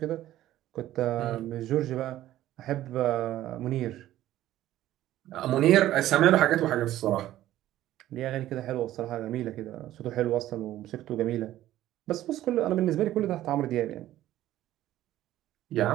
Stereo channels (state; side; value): quieter; left; 13.9 dB